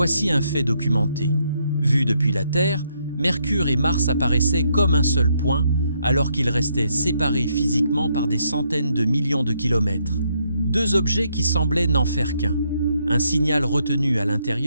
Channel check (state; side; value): inverted; both; correlation -0.75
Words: un fait documenté. Vu depuis la Terre, Mercure et Mars apparaissaient comme un seul point, alors qu'ils restaient séparés physiquement par des centaines de millions de kilomètres. 2 objets qui semblaient n'en faire qu'un. Un signal retenu à